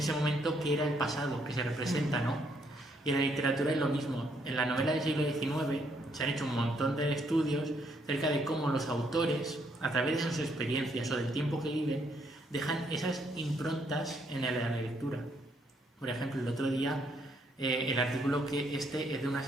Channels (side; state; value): both; normal; correlation 0.72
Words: momento que era el pasado, que se representa, ¿no? Y en la literatura es lo mismo. En la novela del siglo XIX se han hecho un montón de estudios acerca de cómo los autores, a través de sus experiencias o del tiempo que viven, dejan esas improntas en la lectura. Por ejemplo, el otro día, el artículo que es de una